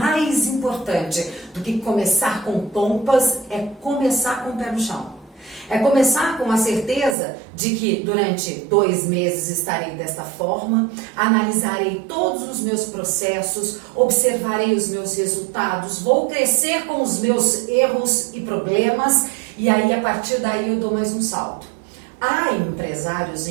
do que começar com pompas é começar com o pé no chão. É começar com a certeza de que durante 2 meses estarei desta forma, analisarei todos os meus processos, observarei os meus resultados, vou crescer com os meus erros e problemas e aí a partir daí eu dou mais um salto. Há empresários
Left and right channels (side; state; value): left; drops out; at 7.2 s